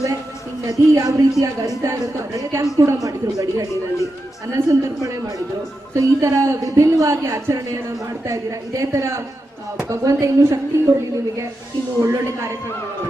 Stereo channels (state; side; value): normal; both; correlation 0.88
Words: ಈ ನದಿ ಯಾವ ರೀತಿಯಾಗಿ ಹರಿತಾ ಇರುತ್ತೋ ಬ್ಲಡ್ ಕ್ಯಾಂಪ್ ಕೂಡ ಮಾಡಿದ್ರು, ಗಡಿಗಡಿನಲ್ಲಿ ಅನ್ನ ಸಂತರ್ಪಣೆ ಮಾಡಿದ್ರು. ಸೊ ಈ ತರ ವಿಭಿನ್ನವಾಗಿ ಆಚರಣೆಯನ್ನ ಮಾಡ್ತಾ ಇದ್ದೀರಾ. ಇದೇ ತರ ಭಗವಂತ ಇನ್ನೂ ಶಕ್ತಿ ಕೊಡ್ಲಿ ನಿಮಗೆ, ಇನ್ನು ಒಳ್ಳೊಳ್ಳೆ ಕಾರ್ಯಕ್ರಮಗಳು.